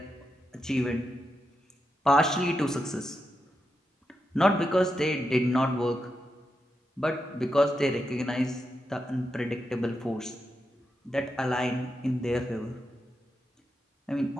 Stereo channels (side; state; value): both; normal; correlation 0.86